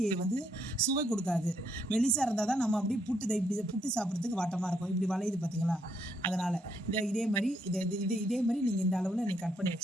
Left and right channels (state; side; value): normal; both; correlation 0.74